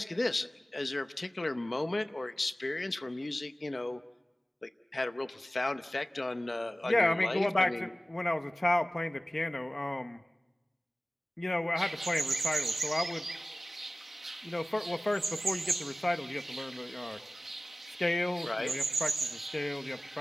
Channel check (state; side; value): normal; both; correlation 0.97